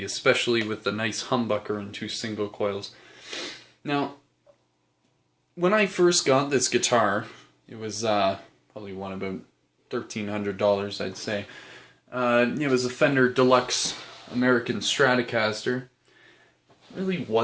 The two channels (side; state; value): both; identical; correlation 1.00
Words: especially with the nice humbucker and 2 single coils. Now, when I first got this guitar, it was probably one about $1,300, I'd say. It was a Fender Deluxe American Stratocaster. Really